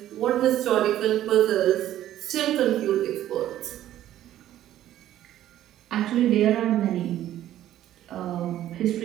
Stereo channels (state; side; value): quieter; left; 12.6 dB